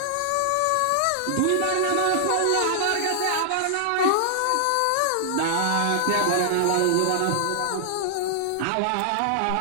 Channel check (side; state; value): both; different; correlation 0.00